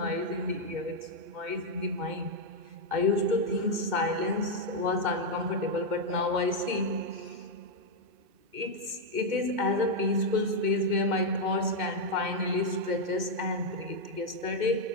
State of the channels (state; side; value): late; left; 2.1 ms